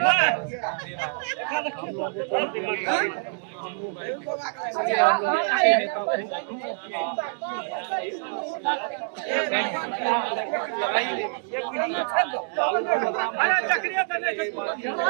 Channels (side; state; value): left; silent; digital silence